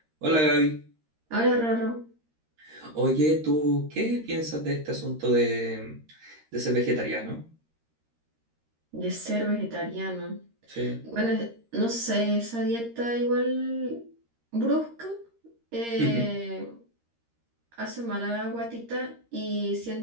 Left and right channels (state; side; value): late; left; 13 ms